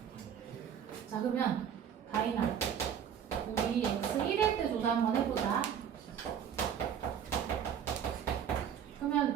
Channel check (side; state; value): left; quieter; 8.5 dB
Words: 자 그러면 다이나 우리 x 1일 때 조사 한번 해보자.